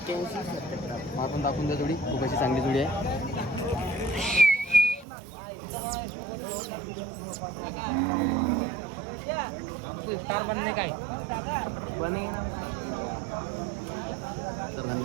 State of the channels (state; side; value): drops out; left; at 5.1 s